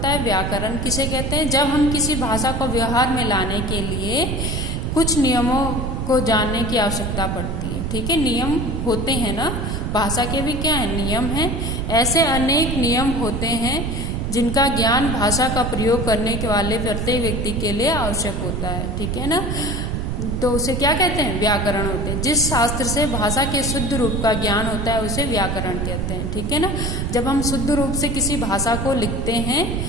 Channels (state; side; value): noise; right; rumble, 2 dB below the sound